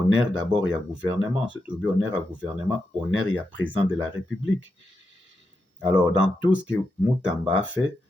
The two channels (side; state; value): both; normal; correlation 0.86